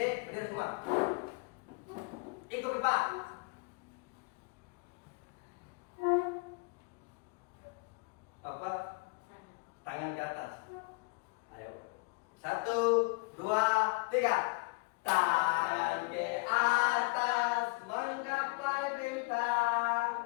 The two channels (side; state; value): right; quieter; 29.0 dB